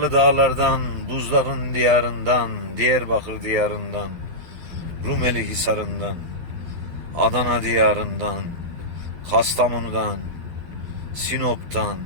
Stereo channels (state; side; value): late; left; 12 ms